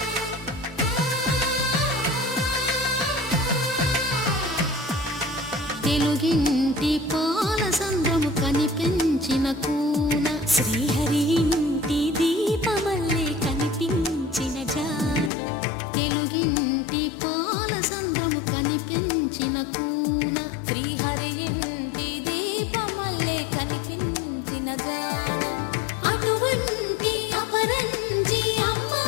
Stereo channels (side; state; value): right; drops out; at 15.3 s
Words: తెలుగింటి పాలసంద్రము కనిపించిన కూన శ్రీహరి ఇంటి దీపమల్లే కనిపించిన జాడ తెలుగింటి పాలసంద్రము కనిపించిన కూన శ్రీహరి ఇంటి దీపమల్లే కనిపించిన జాడ అటువంటి అపరంజి